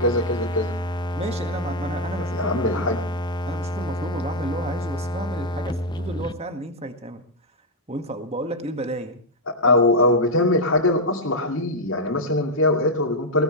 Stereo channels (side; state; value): both; normal; correlation 0.01